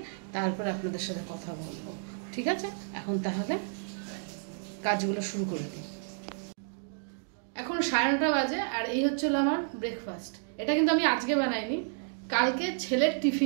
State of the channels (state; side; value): silent; left; digital silence